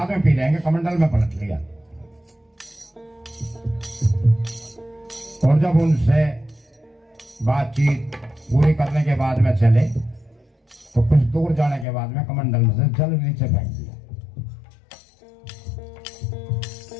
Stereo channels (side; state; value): right; drops out; at 11.9 s